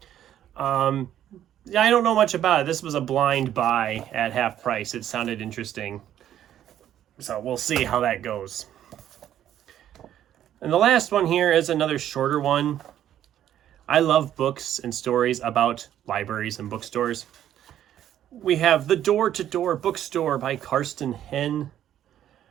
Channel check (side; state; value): left; quieter; 11.2 dB